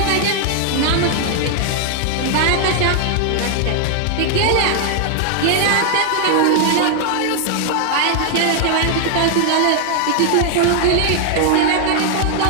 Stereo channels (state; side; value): different; both; correlation 0.00